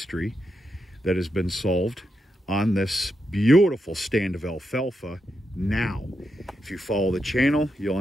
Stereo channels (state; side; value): normal; both; correlation 0.84